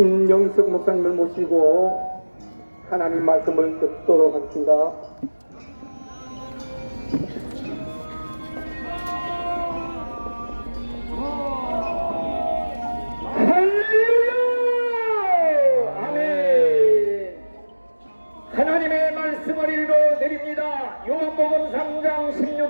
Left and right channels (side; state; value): both; inverted; correlation -1.00